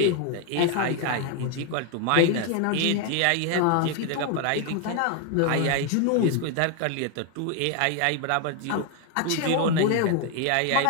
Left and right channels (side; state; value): both; different; correlation 0.01